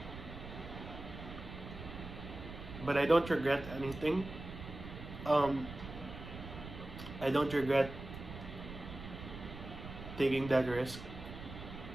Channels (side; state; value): right; noise; rumble, 11 dB below the sound